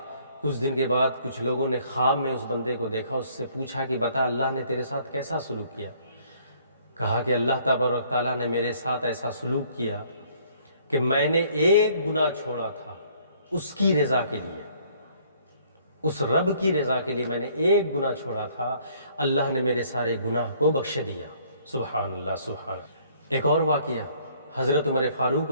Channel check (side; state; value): both; inverted; correlation -0.61